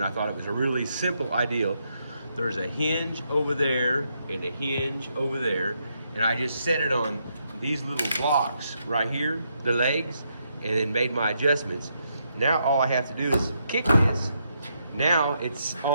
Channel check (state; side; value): inverted; both; correlation -0.78